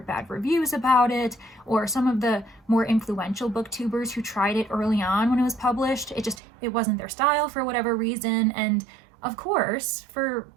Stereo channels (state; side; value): drops out; left; at 6.4 s